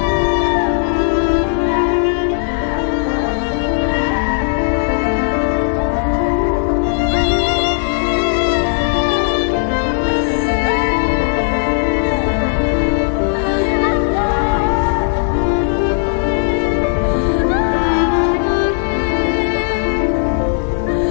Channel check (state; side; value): silent; right; digital silence